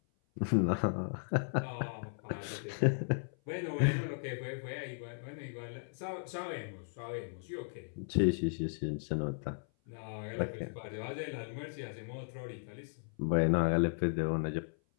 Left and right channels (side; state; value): right; silent; 54 dB below the other